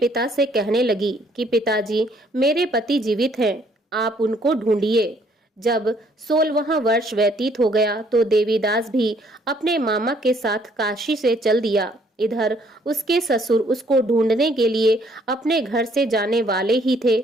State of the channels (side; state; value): both; normal; correlation 0.64